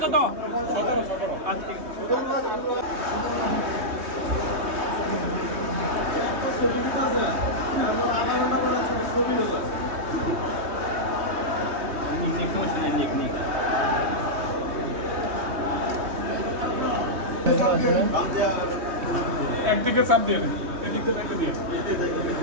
কত? একদিকে চাপ দিয়ে দেন, এদিক দিয়ে একটা দিয়ে।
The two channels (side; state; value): left; late; 3.2 ms